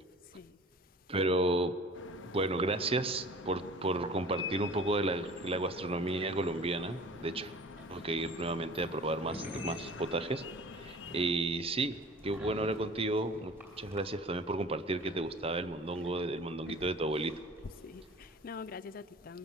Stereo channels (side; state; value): both; normal; correlation 0.43